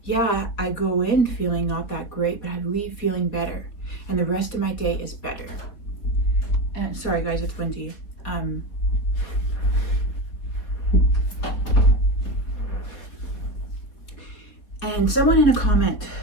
yeah, I go in feeling not that great, but I leave feeling better. And the rest of my day is better. And sorry guys, it's windy. And someone in a comment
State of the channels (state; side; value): late; right; 4.1 ms